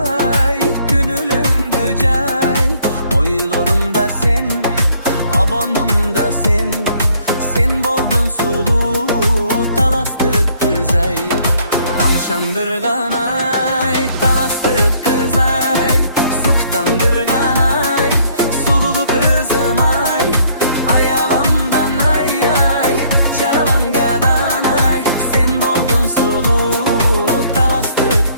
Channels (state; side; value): inverted; both; correlation -0.63